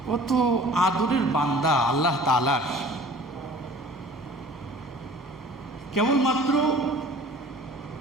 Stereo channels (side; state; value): both; normal; correlation 0.46